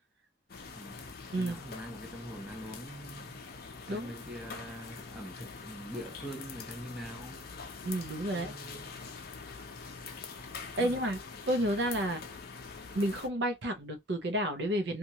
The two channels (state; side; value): normal; both; correlation 0.51